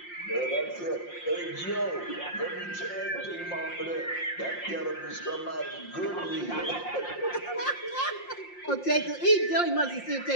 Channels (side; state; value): right; late; 5.6 ms